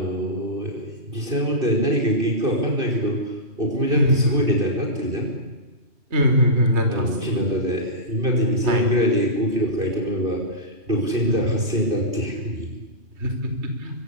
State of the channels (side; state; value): left; late; 2.6 ms